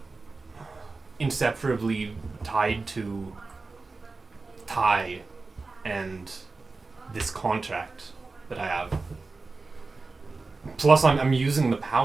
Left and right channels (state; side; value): quieter; left; 3.8 dB